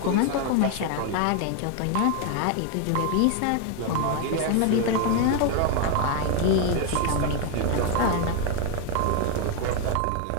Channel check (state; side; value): different; both; correlation 0.01